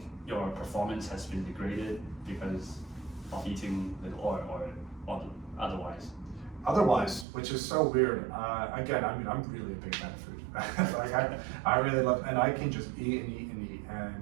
your performance has been degraded because of eating little, or otherwise? Otherwise, which is so weird. Again, I'm really a big fan of food. Like I really love, and I can just eat and eat and eat.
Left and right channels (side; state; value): left; drops out; at 7.2 s